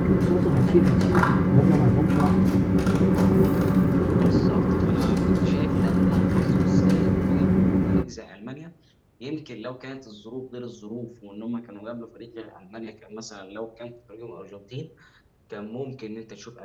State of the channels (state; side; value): identical; both; correlation 1.00